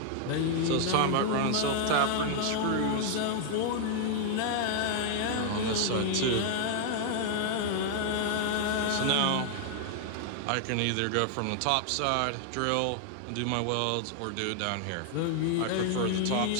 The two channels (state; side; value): different; both; correlation 0.00